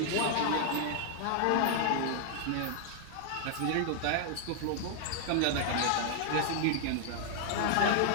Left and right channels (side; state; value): both; different; correlation 0.00